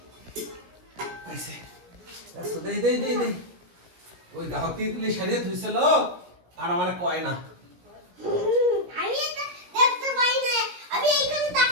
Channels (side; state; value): left; late; 17 ms